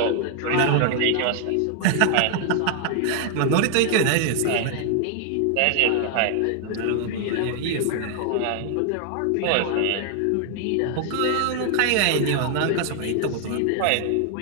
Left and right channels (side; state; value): both; different; correlation 0.00